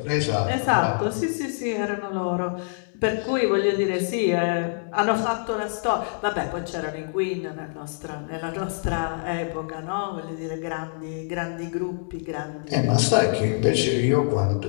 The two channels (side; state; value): right; silent; digital silence